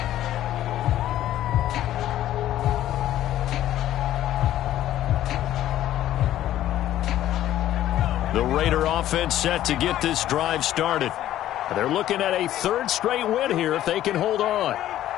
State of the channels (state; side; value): quieter; right; 12.9 dB